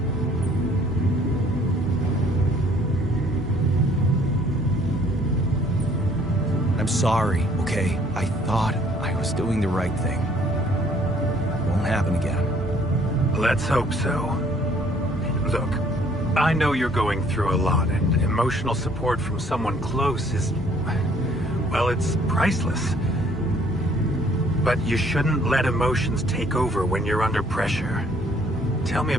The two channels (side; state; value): both; normal; correlation 0.60